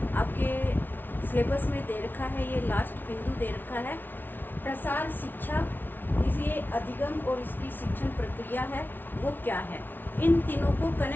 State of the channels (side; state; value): right; late; 0.093 ms